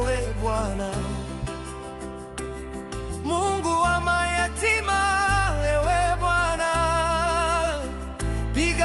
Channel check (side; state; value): both; identical; correlation 1.00